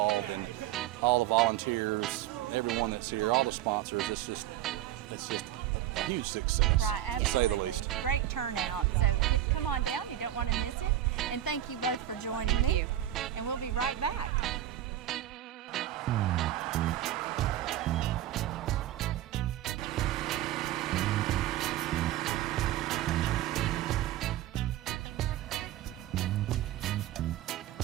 and all the volunteers, everyone that's here, all the sponsors. It's just a huge success. Right, absolutely. Great turnout. So come on down. You don't want to miss it. And thank you both for joining me. And we'll be right back.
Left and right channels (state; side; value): quieter; left; 12.8 dB